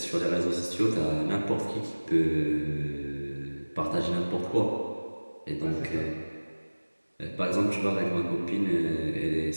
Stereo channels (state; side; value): inverted; both; correlation -1.00